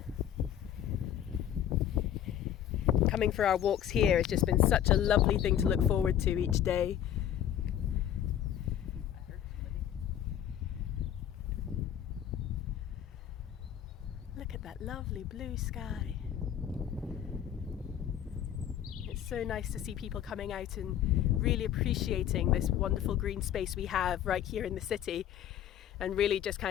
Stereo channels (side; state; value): right; quieter; 10.5 dB